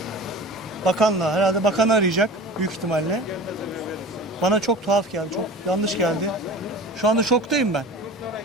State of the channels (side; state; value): both; normal; correlation 0.37